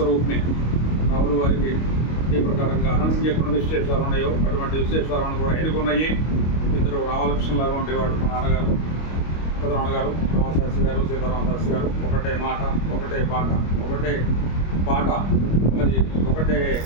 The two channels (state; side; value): late; right; 25 ms